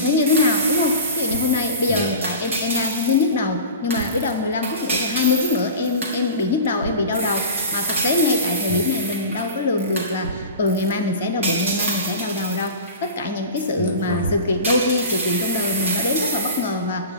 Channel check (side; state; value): both; inverted; correlation -0.33